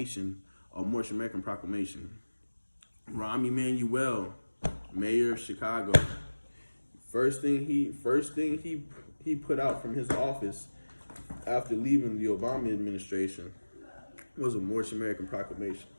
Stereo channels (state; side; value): inverted; both; correlation -1.00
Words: or Moorish American Proclamation. Rahm Emanuel, mayor of Chicago, First thing he put out from his office after leaving the Obama administration was a Moorish American Proclamation.